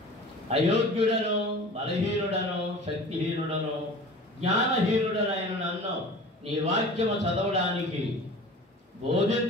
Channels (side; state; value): both; normal; correlation 0.40